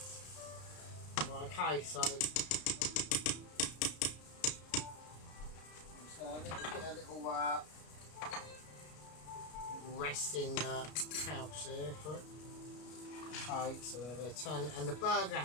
Okay, so I'm just going to get a little resting pouch there for it. Okay, so they're turning, and the burger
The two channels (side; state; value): right; late; 33 ms